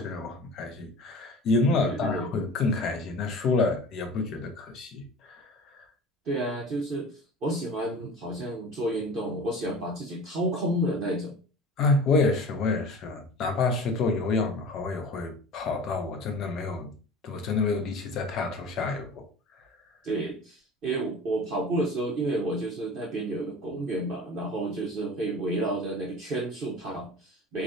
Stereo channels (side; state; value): both; normal; correlation 0.39